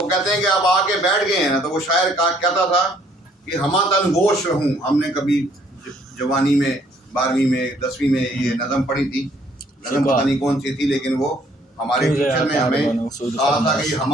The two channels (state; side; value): normal; both; correlation 0.63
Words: वो कहते हैं कि अब आके बैठ गए हैं ना, तो वो शायर कहता था कि हमा तन गोश रहूं। हमने कभी जवानी में 12वीं में 10वीं में ये नज़म पढ़ी थी, नज़म पता नहीं कौन सी थी, लेकिन वो हमारे टीचर ने हमें कहा था कि